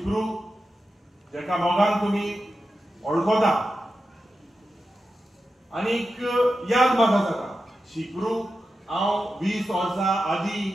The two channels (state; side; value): normal; both; correlation 0.91